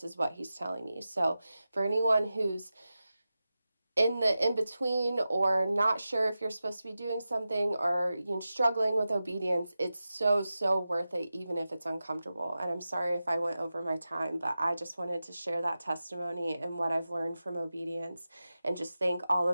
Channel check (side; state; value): both; inverted; correlation -0.93